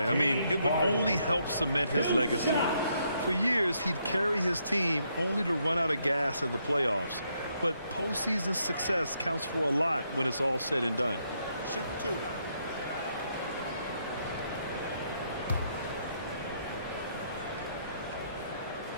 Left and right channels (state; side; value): inverted; both; correlation -0.75